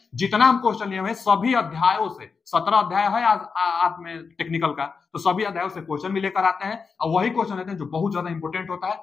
जितना हम क्वेश्चन लिए हुए सभी अध्यायों से, 17 अध्याय है आप में टेक्निकल का, तो सभी अध्यायों से क्वेश्चन भी लेकर आते हैं। और वही क्वेश्चन लेते हैं जो बहुत ज्यादा इंपॉर्टेंट होता है,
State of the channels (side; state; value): right; quieter; 5.2 dB